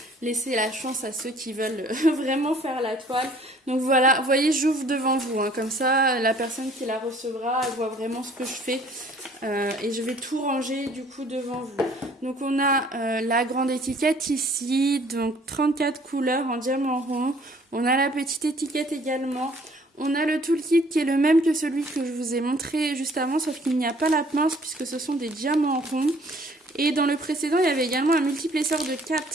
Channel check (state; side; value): normal; both; correlation 0.57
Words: Laissez la chance à ceux qui veulent vraiment faire la toile. Donc voilà, vous voyez, j'ouvre devant vous, hein. Comme ça, la personne qui la recevra, elle voit vraiment ce que je fais. Et je vais tout ranger du coup devant vous. Donc on a la grande étiquette ici, donc 34 couleurs en diamant rond. On a la petite étiquette également. On a le toolkit qui est le même que celui que je vous ai montré juste avant, sauf qu'il n'y a pas la pince puisque ce sont des diamants ronds. Et dans le précédent, il y avait également un multiplesseur de